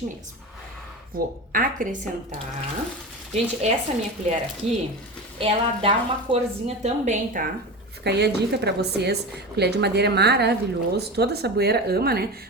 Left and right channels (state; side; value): normal; both; correlation 0.27